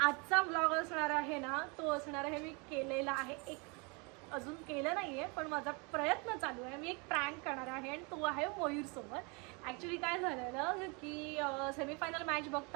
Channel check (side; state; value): left; quieter; 30.9 dB